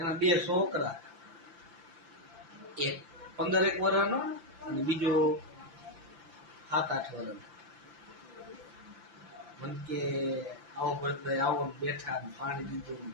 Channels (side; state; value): left; late; 5.9 ms